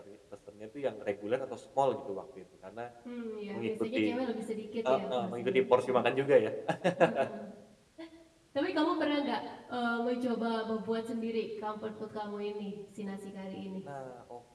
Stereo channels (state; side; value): identical; both; correlation 1.00